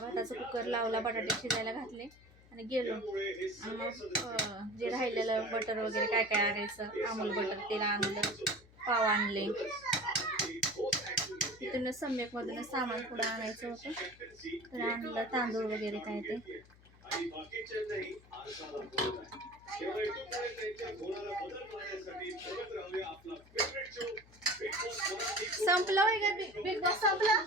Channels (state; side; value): noise; left; hum, 25 dB below the sound